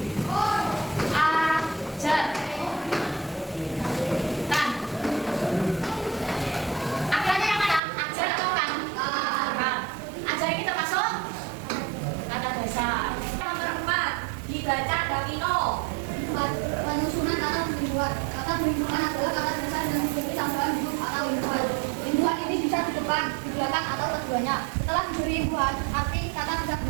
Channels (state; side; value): drops out; left; at 7.8 s